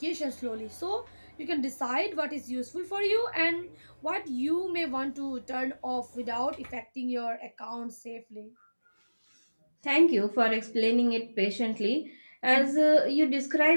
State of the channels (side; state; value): both; inverted; correlation -1.00